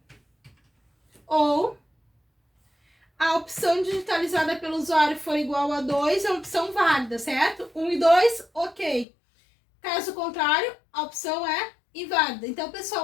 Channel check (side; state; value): right; drops out; at 9.1 s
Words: ou a opção digitalizada pelo usuário for igual a 2, é uma opção válida, certo? 1 e 2, ok. Caso contrário, a opção é inválida. Então, pessoal,